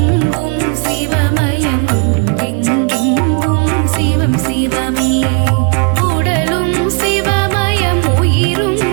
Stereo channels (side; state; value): left; quieter; 35.0 dB